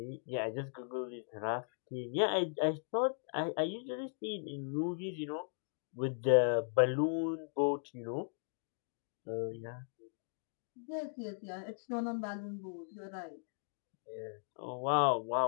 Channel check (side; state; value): right; silent; digital silence